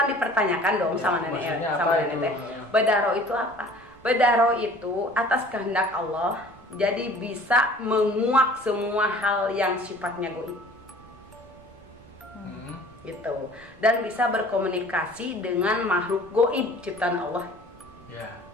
dipertanyakan dong sama nenek teh. Bedah roh itu apa? Bedah roh itu atas kehendak Allah, jadi bisa menguak semua hal yang sifatnya goib. Gitu. Dan bisa berkomunikasi dengan makhluk goib ciptaan Allah.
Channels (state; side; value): noise; right; rumble, 25 dB below the sound